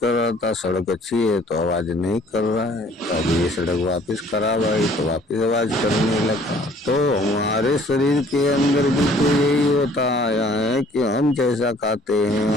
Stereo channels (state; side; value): normal; both; correlation 0.56